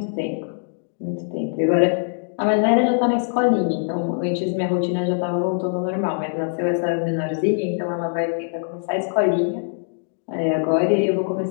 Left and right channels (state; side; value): silent; right; digital silence